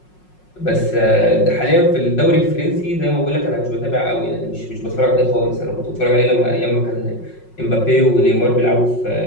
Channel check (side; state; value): right; late; 5.5 ms